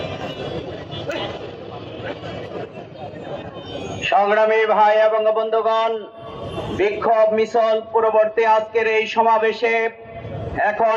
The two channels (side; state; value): both; identical; correlation 1.00